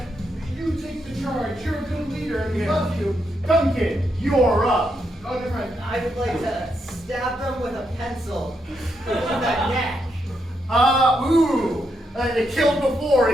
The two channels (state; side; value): normal; both; correlation 0.81